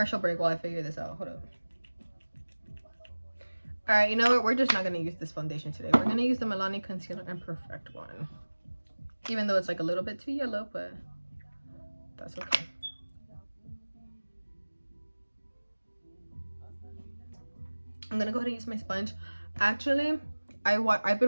break while I figure this out. Hold up. All right, you know what, we're just not gonna use this foundation today. We're gonna use the Milani Concealer and Perfect one, even though it's like a little bit too yellow, but that's okay. I'm gonna go ahead and use my sponge. Actually, I've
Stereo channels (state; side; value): inverted; both; correlation -1.00